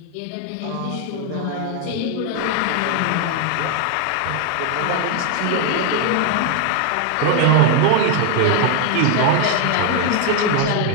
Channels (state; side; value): different; both; correlation 0.00